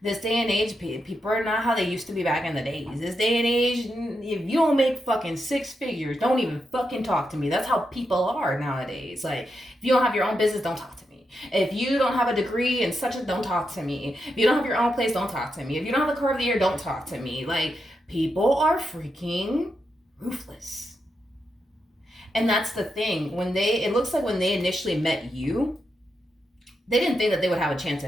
This day and age, people are not how they used to be back in the days. This day and age, if you don't make fucking six figures, don't even fucking talk to me. That's how people are nowadays. Like, if you don't have your own business, don't talk to me. If you don't have a degree and such, don't talk to me. If you don't have your own place, don't talk to me. If you don't have the car of the year, don't talk to me. Like, people are freaking ruthless. And that's the thing. It looks like when they initially met you, they didn't think that they would have a chance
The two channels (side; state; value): both; normal; correlation 0.85